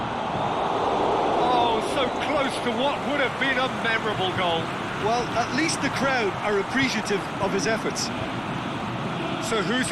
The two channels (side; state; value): both; identical; correlation 1.00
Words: Oh, so close to what would have been a memorable goal. Well, at least the crowd are appreciative of his efforts. So who's